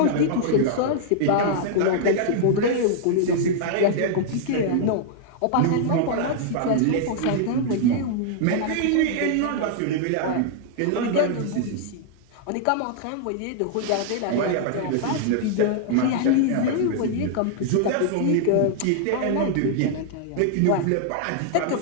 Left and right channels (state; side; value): different; both; correlation -0.01